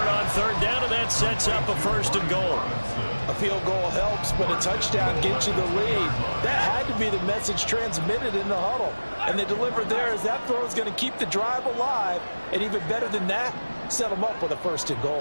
on third down, and that sets up a 1st and goal. A field goal helps, but a touchdown gets you the lead. That had to be the message transmitted in the huddle. And they delivered there as that throw is going to keep the drive alive. And even better than that, set them up with a 1st and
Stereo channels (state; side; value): inverted; both; correlation -1.00